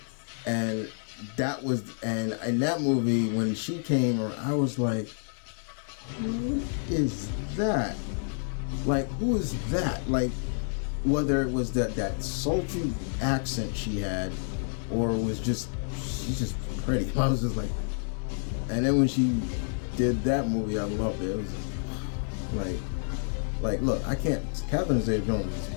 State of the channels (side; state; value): right; silent; digital silence